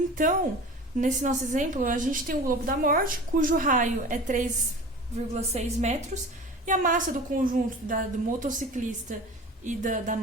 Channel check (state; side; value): normal; both; correlation 0.37